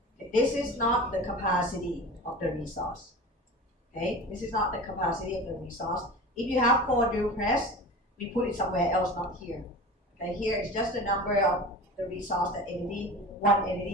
This is not the capacity of the resource. Okay, this is not the capacity of the resource. If you have 4 drill press, we put it somewhere else, not here. Okay, here is just the number of the resource that one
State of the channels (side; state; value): both; normal; correlation 0.34